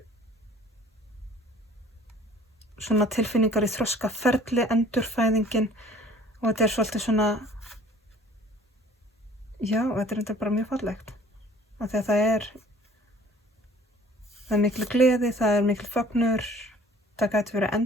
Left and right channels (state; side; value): normal; both; correlation 0.52